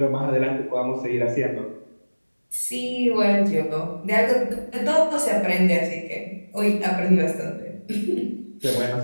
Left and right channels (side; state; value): both; inverted; correlation -1.00